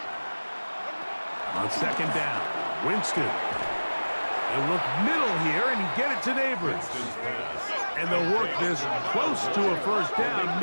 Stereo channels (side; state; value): both; inverted; correlation -1.00